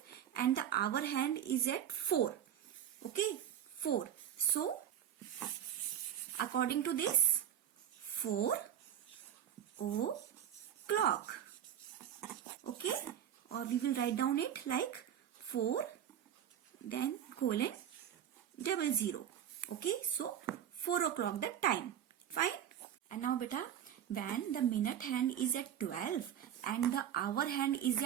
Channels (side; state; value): left; quieter; 10.1 dB